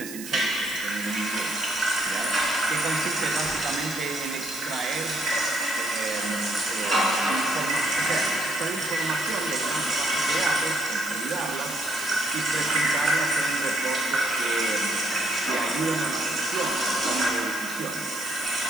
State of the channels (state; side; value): noise; right; hiss, 11 dB below the sound